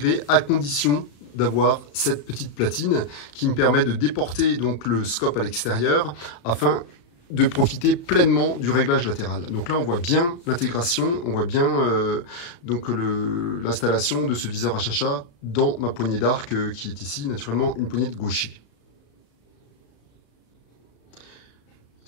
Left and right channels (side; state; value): right; late; 35 ms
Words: à condition d'avoir cette petite platine qui me permet de déporter donc le scope à l'extérieur afin de profiter pleinement du réglage latéral. Donc là, on voit bien l'intégration, on voit bien donc l'installation de ce viseur HHA dans ma poignée d'arc qui est ici, naturellement, une poignée de gaucher.